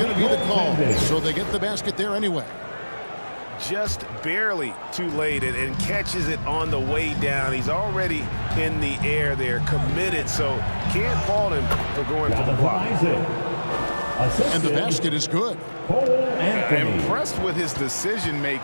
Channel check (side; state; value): both; inverted; correlation -1.00